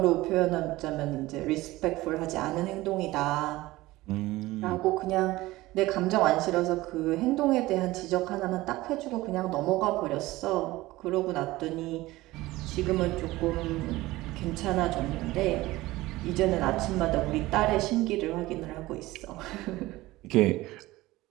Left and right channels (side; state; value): left; quieter; 18.6 dB